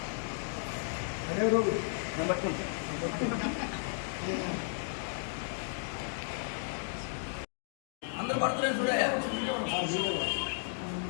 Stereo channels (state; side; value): silent; right; digital silence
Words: అందరూ పడుతున్నారు చూడయా.